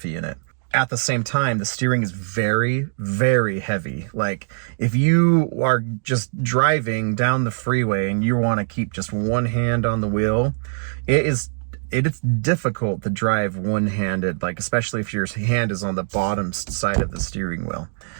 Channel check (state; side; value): silent; left; digital silence